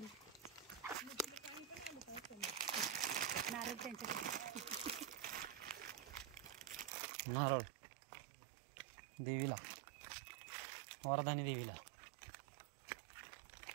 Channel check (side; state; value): left; drops out; at 6.9 s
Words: नारळ देवीला. वरदानी देवीला.